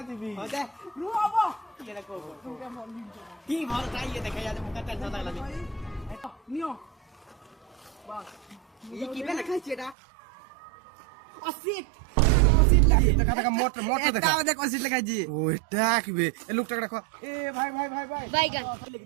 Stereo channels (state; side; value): drops out; left; at 10.0 s